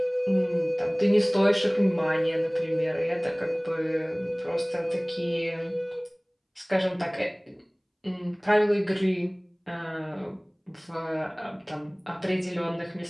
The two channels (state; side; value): identical; both; correlation 1.00